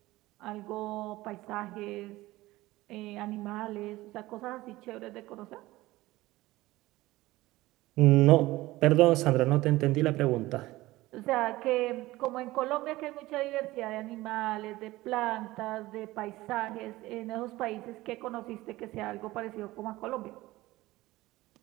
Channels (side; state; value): left; quieter; 18.3 dB